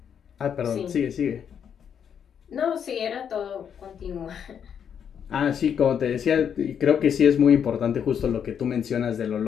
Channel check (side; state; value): right; quieter; 8.0 dB